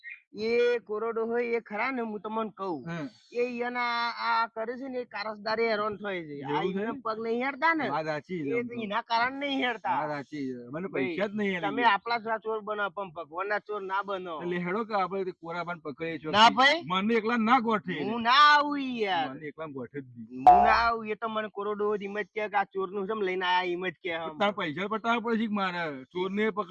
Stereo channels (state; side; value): identical; both; correlation 1.00